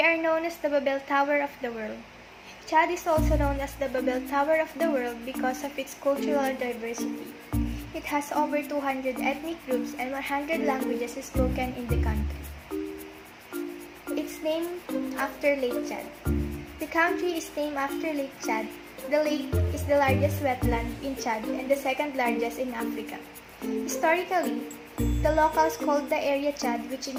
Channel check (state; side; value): identical; both; correlation 1.00